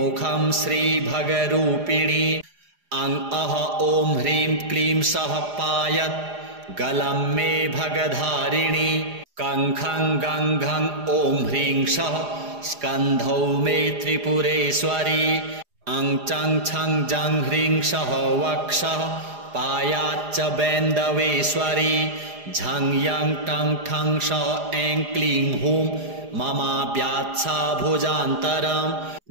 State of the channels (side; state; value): left; late; 4.9 ms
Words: श्रीभगरूपिणी अं अह ॐ ह्रीं क्लीं सः पायत् गलं मे भगधारिणी कङ्खं गङ्घं ॐ ह्रीं सः स्कन्धौ मे त्रिपुरेश्वरी अं चं छं जं ह्रीं सः वक्षः पायाच्च बैन्दवेश्वरी झं यं टं ठं सः ऐं क्लीं हूं ममाव्यात्सा भुजान्तरं